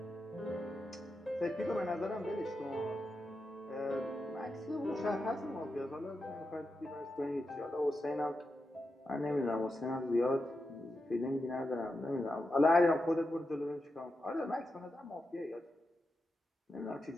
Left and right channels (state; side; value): normal; both; correlation 0.88